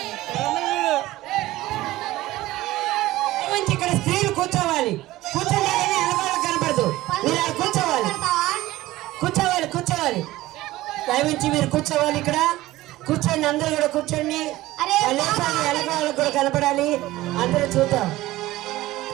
ఇక్కడ స్త్రీలు కూర్చోవాలి. కూర్చోండి, కనపడదు. మీరు కూర్చోవాలి, కూర్చోవాలి, కూర్చోవాలి. దయవించి మీరు కూర్చోవాలి. ఇక్కడ కూర్చోండి, అందరూ కూడా కూర్చోండి. ఎలకాలకు కూడా కనపడాలి. అందరూ చూద్దాం.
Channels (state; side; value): quieter; left; 17.1 dB